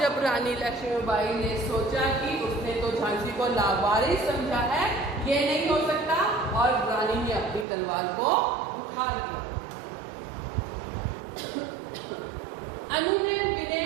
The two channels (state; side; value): drops out; left; at 7.7 s